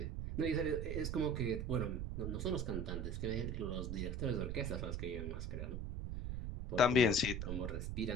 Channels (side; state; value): right; noise; rumble, 3 dB below the sound